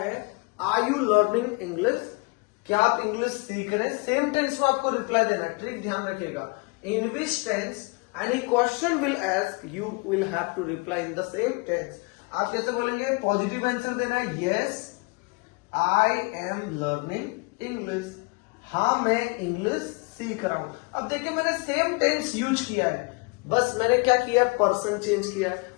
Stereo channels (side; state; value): right; quieter; 29.1 dB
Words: आर यू लर्निंग इंग्लिश, क्या आप इंग्लिश सीख रहे हैं, सेम टेंस में आपको रिप्लाई देना है। ट्रिक ध्यान रखिएगा, in which tense any question will ask you will have to reply in the same tense. आप कैसे बोलेंगे, पॉजिटिव आंसर देना है, yes I am learning English. हाँ मैं इंग्लिश सीख रहा हूं। अब देखिए मैंने सेम टेंस यूज किया है, बस मैंने क्या किया, पर्सन चेंज किया है।